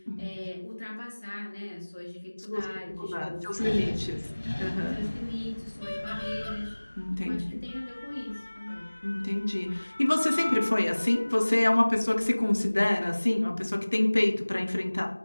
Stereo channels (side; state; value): both; inverted; correlation -1.00